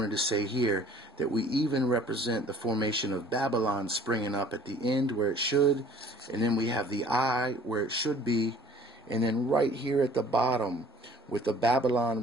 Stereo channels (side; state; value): both; normal; correlation 0.52